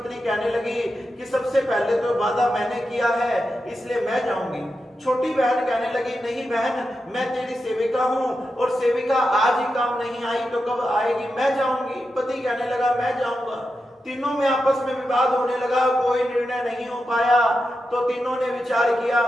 कहने लगी कि सबसे पहले तो वादा मैंने किया है इसलिए मैं जाऊंगी। छोटी बहन कहने लगी नहीं बहन, मैं तेरी सेविका हूं और सेविका आज ही काम नहीं आई तो कब आएगी, मैं जाऊंगी। पति कहने लगा मैं जाऊंगा। तीनों में आपस में विवाद होने लगा, कोई निर्णय नहीं हो पाया। तो तीनों ने विचार किया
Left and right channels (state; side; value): normal; both; correlation 0.89